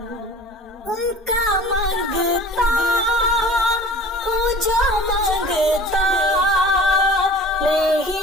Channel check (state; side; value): normal; both; correlation 0.43